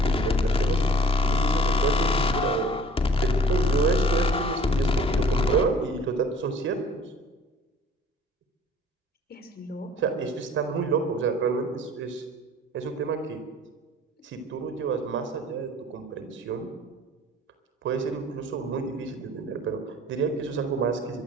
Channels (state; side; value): normal; both; correlation 0.51